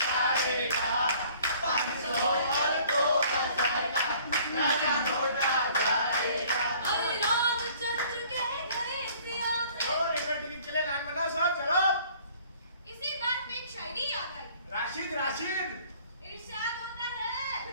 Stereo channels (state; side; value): inverted; both; correlation -0.54